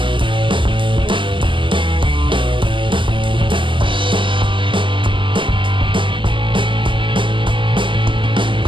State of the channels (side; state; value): left; late; 0.24 ms